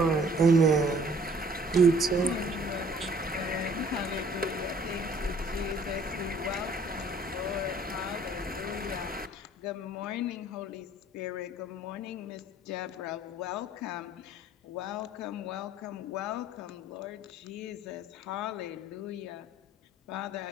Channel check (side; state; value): both; normal; correlation 0.56